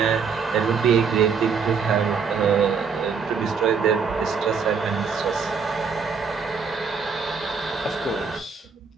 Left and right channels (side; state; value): left; quieter; 5.8 dB